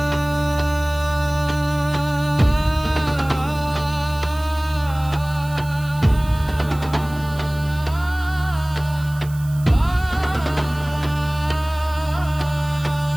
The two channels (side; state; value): right; noise; hiss, 20 dB below the sound